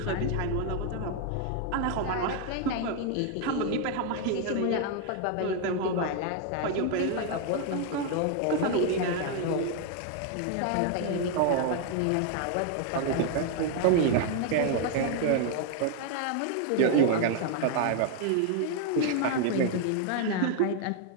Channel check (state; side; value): different; both; correlation 0.00